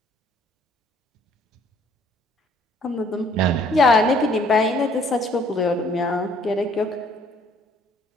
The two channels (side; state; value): both; normal; correlation 0.60